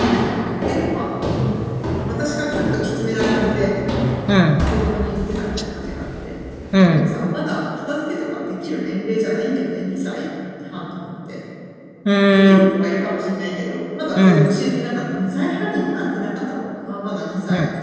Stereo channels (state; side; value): identical; both; correlation 1.00